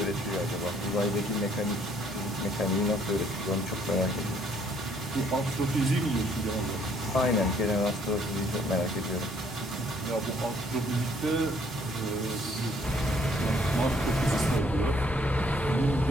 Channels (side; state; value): both; normal; correlation 0.64